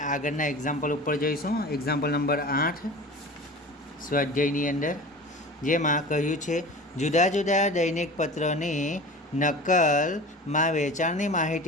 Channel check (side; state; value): both; normal; correlation 0.37